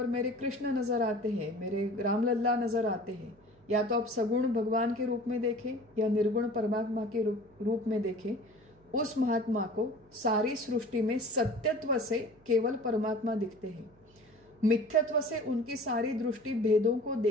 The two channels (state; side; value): noise; right; hum, 28 dB below the sound